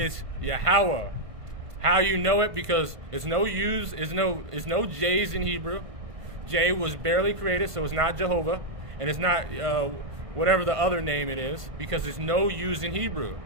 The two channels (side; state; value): left; late; 1.5 ms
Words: Yahweh. How you know it? Because it's no J's in Hebrew. J was barely created, so it's not Jehovah, and it's not whatever the other name it is, because it's no U's in Hebrew.